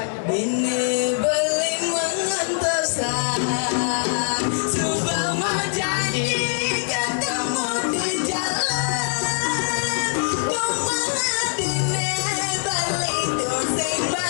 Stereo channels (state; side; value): silent; right; digital silence